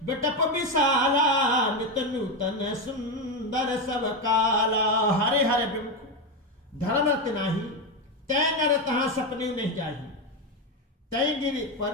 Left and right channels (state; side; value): normal; both; correlation 0.11